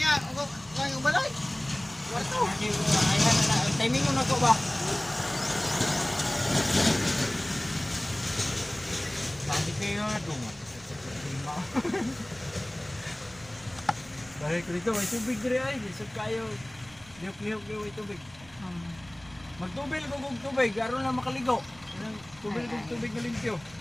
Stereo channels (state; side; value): noise; right; rumble, 24 dB below the sound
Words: Ako balay. Warto. Timing mo na ko ba? Tadi kayo dong. Balik dito, may tubig dire ay. Isip kayo. Lihok-lihok kayo may tubig. Magtubil ko kung tubig, aron na makaligo. Tubil kung tubig na limpyo.